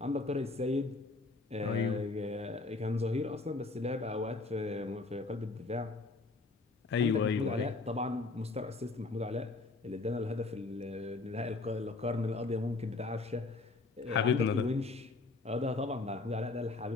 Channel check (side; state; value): right; quieter; 3.7 dB